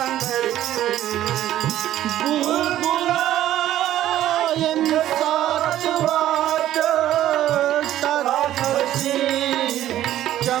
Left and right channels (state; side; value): quieter; left; 12.9 dB